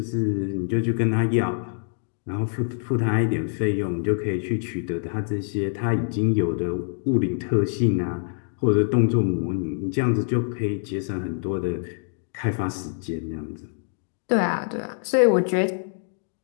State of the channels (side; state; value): right; silent; digital silence